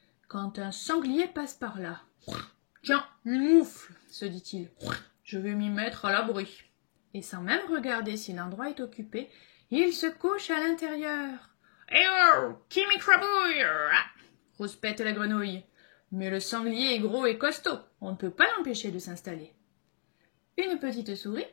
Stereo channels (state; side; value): silent; right; 57 dB below the other